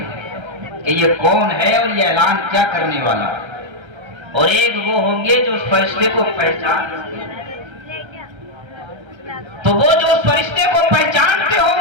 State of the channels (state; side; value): late; left; 1.3 ms